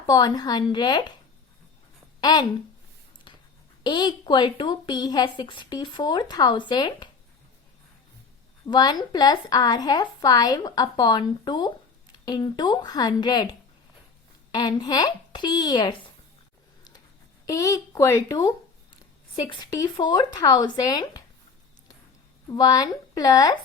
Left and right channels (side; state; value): right; quieter; 5.0 dB